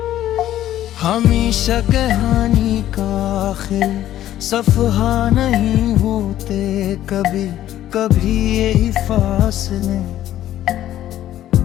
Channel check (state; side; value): quieter; right; 12.7 dB